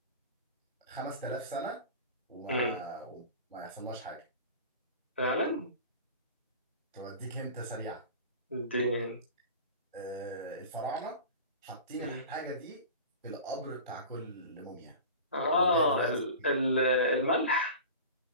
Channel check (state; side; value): inverted; both; correlation -0.35